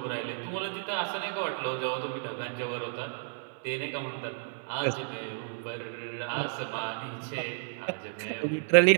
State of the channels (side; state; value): left; silent; digital silence